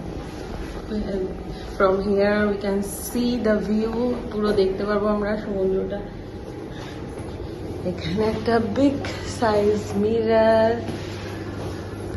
And from here we can see the view. পুরো দেখতে পারবো আমরা সমুদ্রটা। এখানে একটা big size mirror.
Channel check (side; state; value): both; identical; correlation 1.00